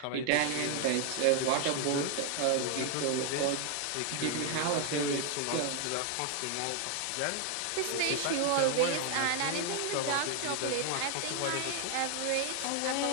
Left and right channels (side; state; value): both; different; correlation 0.00